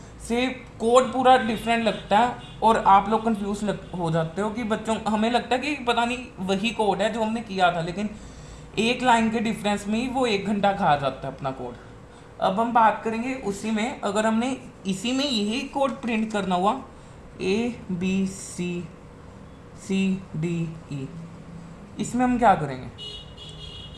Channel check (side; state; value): both; identical; correlation 1.00